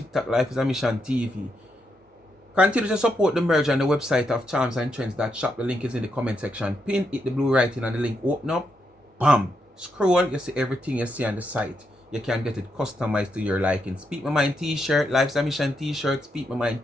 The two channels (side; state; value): both; normal; correlation 0.81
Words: Life is a Mission TV. Continue to support the merge on the website of Charms and Trends that shop. The link is in the comment section. Pin, hit the blue writing and the link open up. Bam! Scroll, you see everything you see on the site. You can get it customized to your liking. Speak My Mind t-shirt, Life is a Mission t-shirt, Speak My